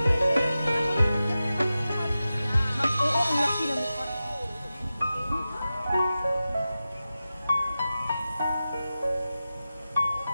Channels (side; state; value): both; inverted; correlation -0.94